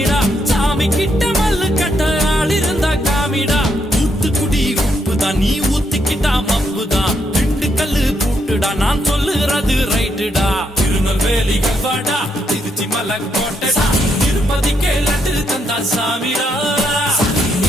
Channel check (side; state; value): both; normal; correlation 0.77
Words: சாமி கிட்ட மல்லு கட்ட ஆள் இருந்தா காமிடா ஊத்துக்குடி உப்புதான் நீ ஊத்திக்கிட்டா மப்புதான் ரெண்டு கல்லு பூட்டுடா நான் சொல்லுறது ரைட்டுடா திருநெல்வேலி கல்வாடா திருச்சி மலை கோட்டடா திருப்பதிக்கே லட்டு தந்தா சாமிடா